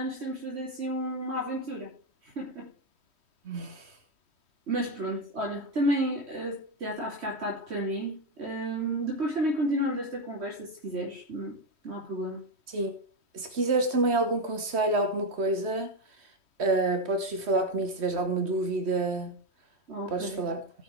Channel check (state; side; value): late; left; 3.1 ms